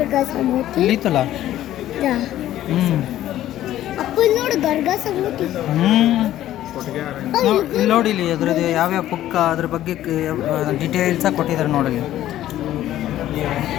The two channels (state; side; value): quieter; right; 13.2 dB